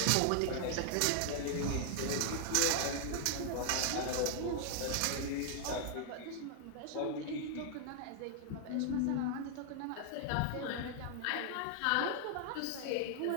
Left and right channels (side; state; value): both; different; correlation 0.00